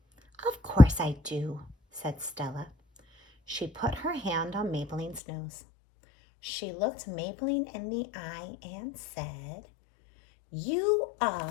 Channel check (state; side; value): drops out; right; at 5.2 s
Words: "Of course I do," said Stella. She put her hand on Maybelline's nose. She looked Maybelline in the eye and said, "You